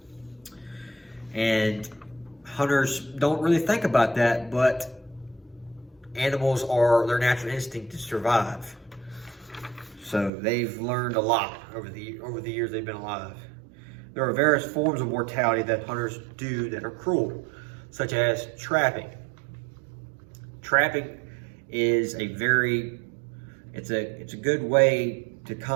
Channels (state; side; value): drops out; left; at 10.3 s